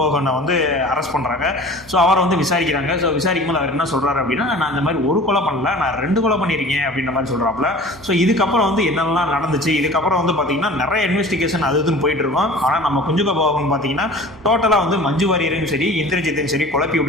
வந்து அரெஸ்ட் பண்ணுறாங்க. ஸோ அவரை வந்து விசாரிக்கிறாங்க. ஸோ விசாரிக்கும் போது அவர் என்ன சொல்கிறாரு அப்படின்னா, நான் இந்த மாதிரி ஒரு கொலை பண்ணல, நான் 2 கொலை பண்ணியிருக்கேன் அப்படின்ற மாதிரி சொல்கிறாப்புல. ஸோ இதுக்கப்புறம் வந்து என்னெல்லாம் நடந்துச்சு, இதுக்கப்புறம் வந்து பார்த்தீங்கன்னா நிறைய இன்வெஸ்டிகேஷன் அது இதுன்னு போயிட்டு இருக்கோம். ஆனால் நம்ம குஞ்சுகோ போகன் பார்த்தீங்கன்னா டோட்டலாக வந்து மஞ்சு வாரியரையும் சரி இந்திரஜித்தையும் சரி குழப்பி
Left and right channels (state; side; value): normal; both; correlation 0.41